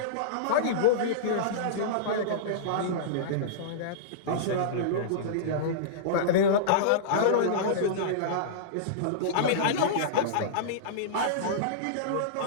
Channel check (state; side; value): different; both; correlation -0.03